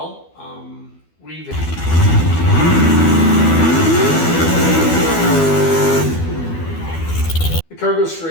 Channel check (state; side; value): late; right; 12 ms